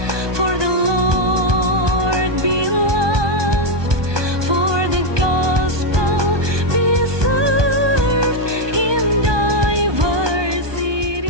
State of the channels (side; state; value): left; late; 1.2 ms